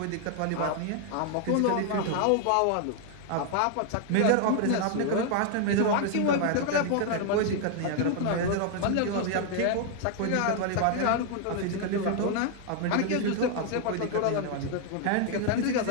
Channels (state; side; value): different; both; correlation 0.00